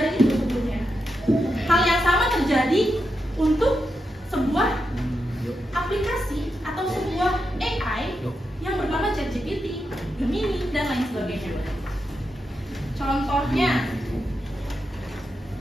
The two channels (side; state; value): both; normal; correlation 0.86